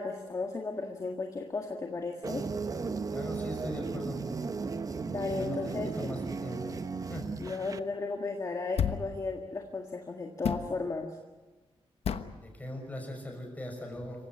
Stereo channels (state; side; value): normal; both; correlation 0.76